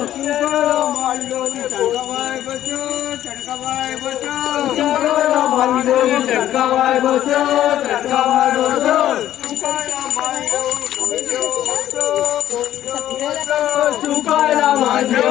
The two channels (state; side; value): quieter; right; 12.4 dB